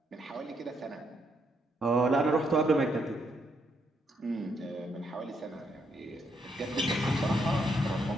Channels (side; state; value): both; normal; correlation 0.76